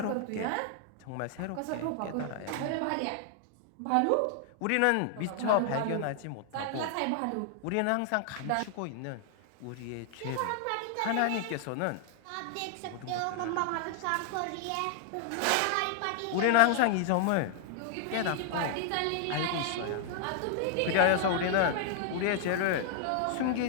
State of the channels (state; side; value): different; both; correlation 0.00